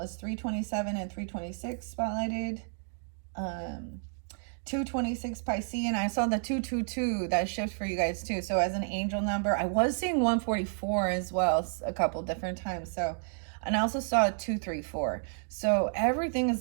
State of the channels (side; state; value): left; silent; 57 dB below the other